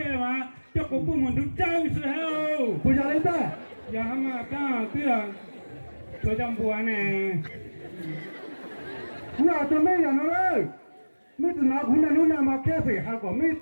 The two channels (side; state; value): both; inverted; correlation -1.00